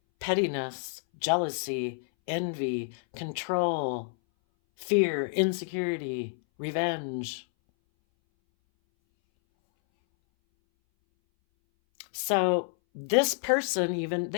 pettiness, jealousy, envy, control, fear, insecurity, revenge. So this person, even,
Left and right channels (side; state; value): right; silent; 59 dB below the other